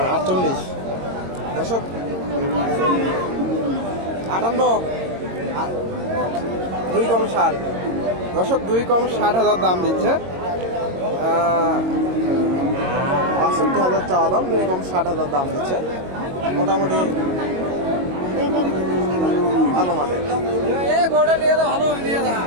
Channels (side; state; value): left; late; 22 ms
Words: 48। দর্শক 58, 2 কম 60। দর্শক 2 কম 60,000 দাম দিচ্ছে। 62,000 চাওয়া দাম, 2 কম 60,000 দাম দিচ্ছে। মোটামুটি ভালো মানের।